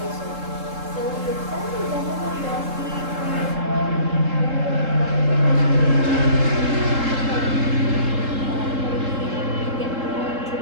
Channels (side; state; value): left; late; 3.7 ms